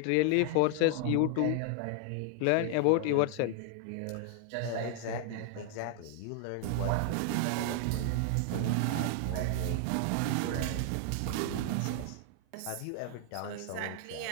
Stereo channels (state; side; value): different; both; correlation 0.00